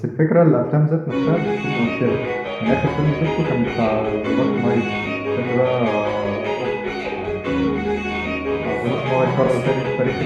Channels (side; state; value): both; identical; correlation 1.00